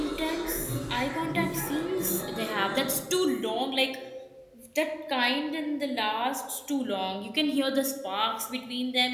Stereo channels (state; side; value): identical; both; correlation 1.00